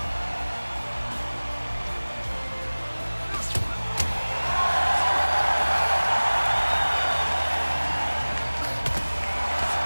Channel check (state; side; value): inverted; both; correlation -1.00